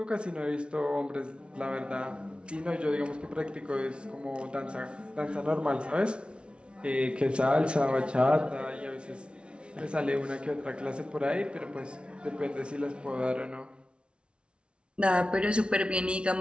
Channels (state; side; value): late; left; 0.058 ms